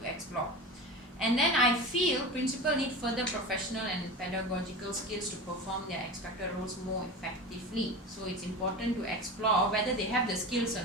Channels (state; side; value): normal; both; correlation 0.29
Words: to explore. And then I feel principals need further professional and pedagogical skills to perform their expected roles more effectively. So it's important to explore whether they have the skills or